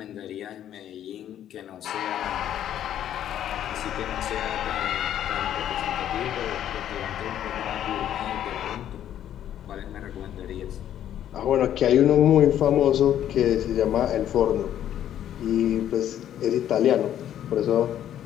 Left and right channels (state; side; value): quieter; right; 10.9 dB